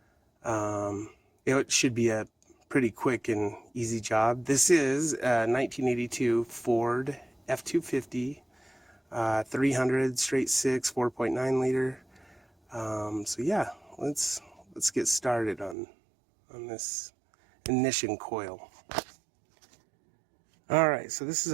it should be a pretty quick and easy job. This is a 1982 Ford F-250 300 straight 6 4.9 liter. So yeah, let's get started on this ignition coil. All right, so this is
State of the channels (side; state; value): left; drops out; at 15.8 s